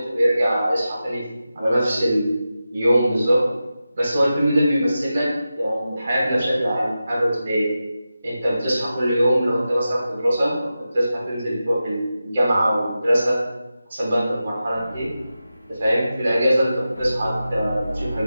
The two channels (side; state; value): both; inverted; correlation -0.92